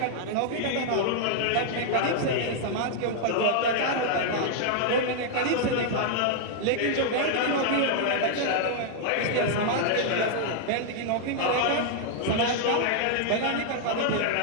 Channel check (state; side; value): different; both; correlation -0.01